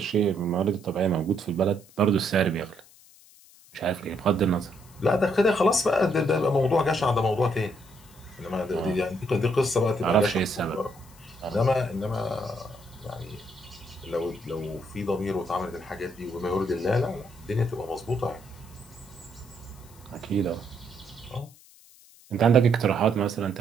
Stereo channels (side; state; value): left; noise; hiss, 25 dB below the sound